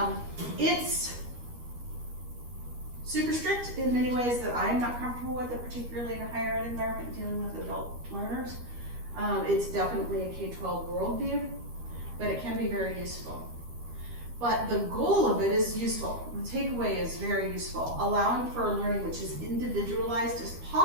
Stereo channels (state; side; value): late; left; 13 ms